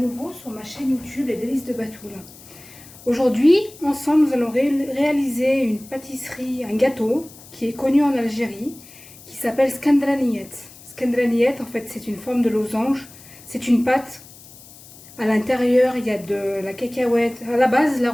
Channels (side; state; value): left; noise; hiss, 20 dB below the sound